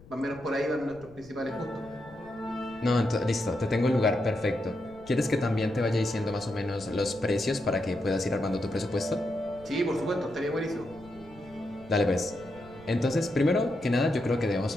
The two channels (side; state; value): left; noise; rumble, 22 dB below the sound